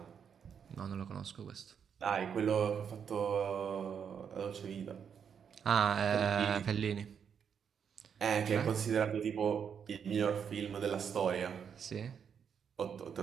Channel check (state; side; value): quieter; left; 7.4 dB